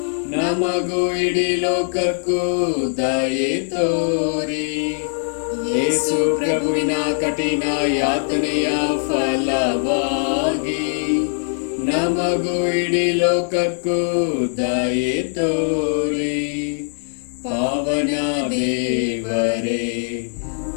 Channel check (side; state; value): right; silent; 62 dB below the other